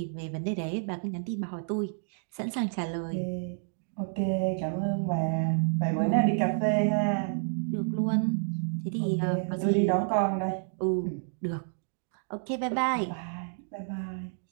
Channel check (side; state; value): left; silent; digital silence